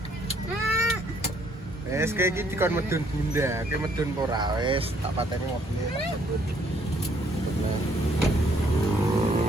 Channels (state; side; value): normal; both; correlation 0.66